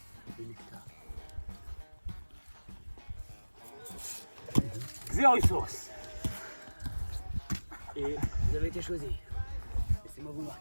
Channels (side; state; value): both; inverted; correlation -1.00